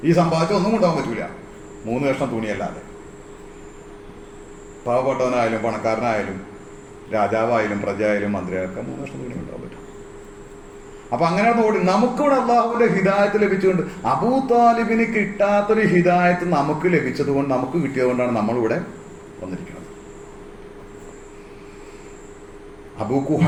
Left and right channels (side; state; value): both; identical; correlation 1.00